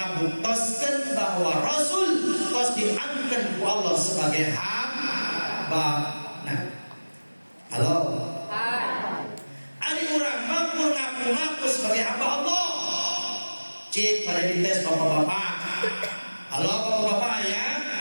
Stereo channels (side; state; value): both; inverted; correlation -1.00